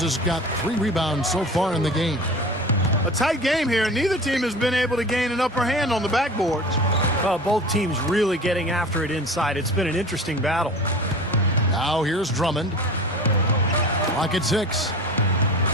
has got 3 rebounds so far in the game. A tight game here, and neither team has been able to gain an upper hand on the backboards. Well, both teams really getting after it inside. It's been an interesting battle. Now here's Drummond. Clock at 6.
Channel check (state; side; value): normal; both; correlation 0.37